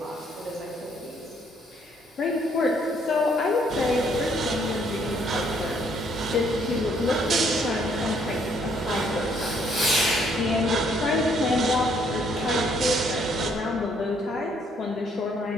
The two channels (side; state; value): both; normal; correlation 0.67